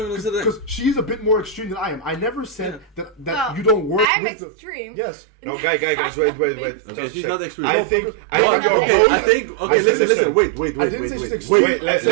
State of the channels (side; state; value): left; drops out; at 4.0 s